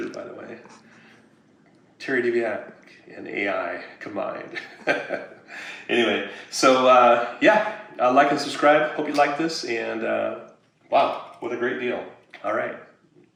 by the way. Terry Diviak and AI combined. Anyway, so yeah, like and subscribe. Hope you like this, and wow, what a great deal. All right,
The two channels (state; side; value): identical; both; correlation 1.00